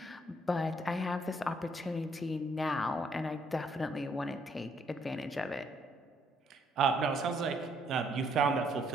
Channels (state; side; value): normal; both; correlation 0.69